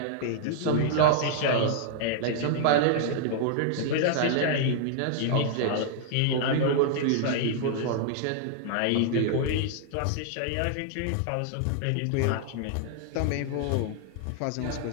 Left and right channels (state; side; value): different; both; correlation -0.01